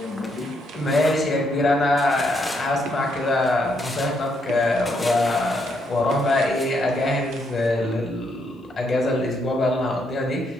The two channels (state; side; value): normal; both; correlation 0.75